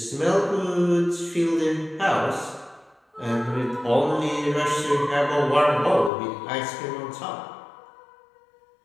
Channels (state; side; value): drops out; right; at 6.1 s